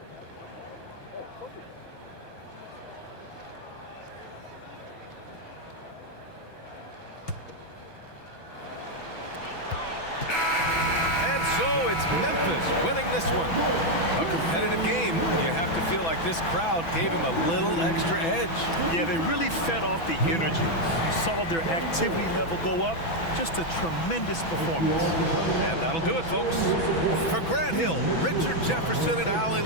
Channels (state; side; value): late; right; 6.0 ms